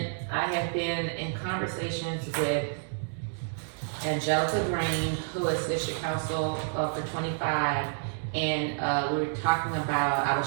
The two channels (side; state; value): left; silent; digital silence